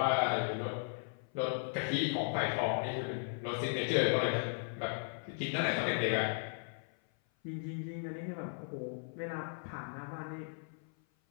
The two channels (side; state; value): right; silent; 53 dB below the other